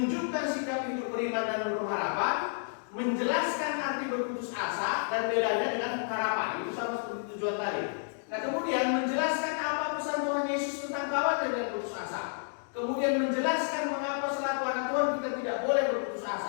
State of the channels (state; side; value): silent; right; digital silence